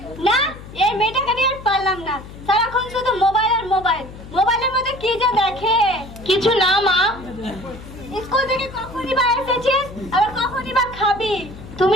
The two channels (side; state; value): left; noise; hum, 15 dB below the sound